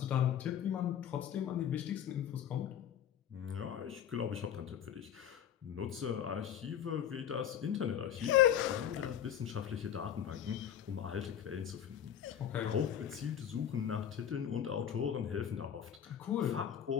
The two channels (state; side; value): quieter; right; 9.4 dB